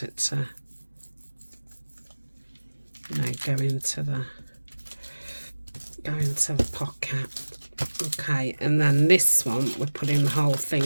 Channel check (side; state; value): both; inverted; correlation -1.00